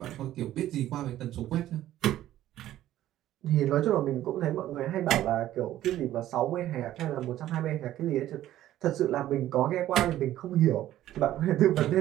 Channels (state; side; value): quieter; left; 13.4 dB